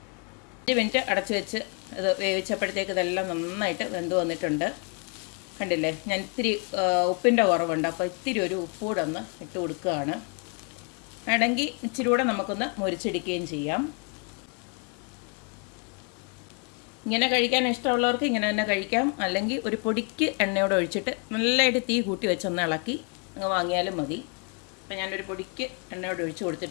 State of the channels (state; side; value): quieter; right; 36.8 dB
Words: മിനിറ്റ് അടച്ചു വെച്ച് ഇത് വേവിച്ചപ്പോഴത്തേക്ക് ഇതെല്ലാം നന്നായിട്ട് വെന്ത് വന്നിട്ടുണ്ട്. കണ്ടില്ലേ, ഞാൻ ഇത്തിരി ഉപ്പിൻ്റെ കുറവുണ്ട്, അപ്പോൾ ഇത്തിരി ഒരു ഉപ്പ് കൂടെ ഒന്ന് ഇട്ട് കൊടുക്കുകയാണ്. വേണമെങ്കിൽ ഇച്ചിരി കൂടെ നമുക്കൊന്ന് മുരിച്ചെടുക്കുകയും ചെയ്യാം. ഇങ്ങനെ കഴിക്കാൻ ഇഷ്ടമുള്ളവർക്ക് ഇങ്ങനെ തന്നെ കഴിക്കാം. അല്ലെങ്കിൽ ഒരു പൊടിക്ക് എണ്ണയോടെ ഒഴിച്ചിട്ട് നല്ലതായിട്ട് തീ കൂട്ടി വെച്ചൊന്ന് ഇളക്കി അങ്ങ് വാങ്ങിയാലും മതി. അപ്പം ഞാനൊരു പൊടിക്ക് എണ്ണയോടെ ഒഴിച്ച്